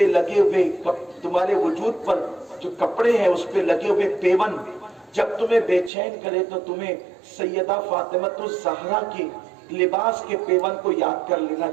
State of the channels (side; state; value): left; drops out; at 5.9 s